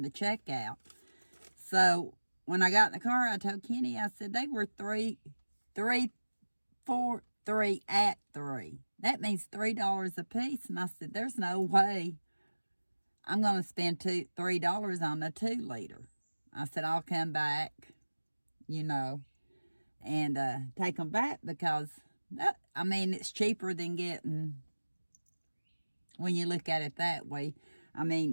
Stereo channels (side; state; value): both; inverted; correlation -1.00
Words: the checkout. So when I got in the car, I told Kenny, I said, they were 3 at 3. That means $3 a piece. And I said, there's no way I'm going to spend $3 on a 2-liter. I said, I'll come back, and take them back, because it's cheaper than getting, when you look at it that way.